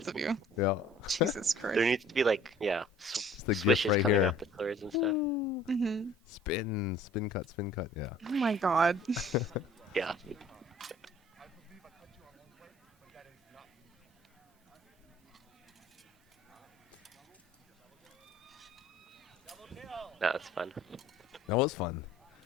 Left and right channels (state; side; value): normal; both; correlation 0.52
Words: of you. Yeah. Jesus Christ. There needs to be like, It's the gift swishes right coming here. off the swords and stuff. Mm-hmm. Spin cut, yeah. Oh my god. Yeah. No, that's fun. That was fun.